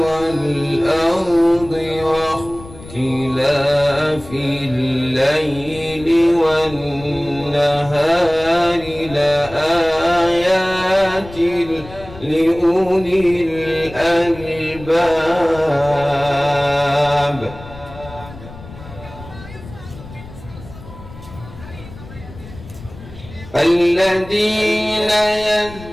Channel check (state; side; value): noise; left; rumble, 16 dB below the sound